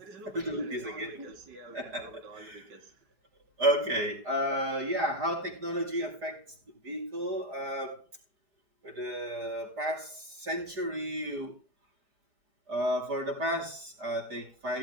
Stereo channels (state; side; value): late; left; 5.0 ms